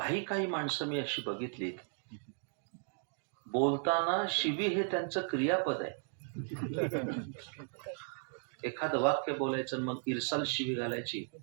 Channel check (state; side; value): silent; left; 54 dB below the other